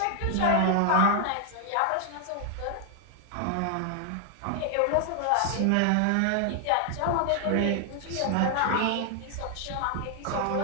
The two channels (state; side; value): different; both; correlation 0.00